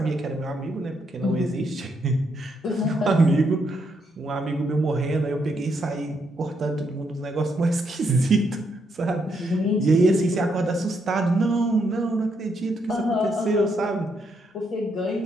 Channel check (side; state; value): both; normal; correlation 0.77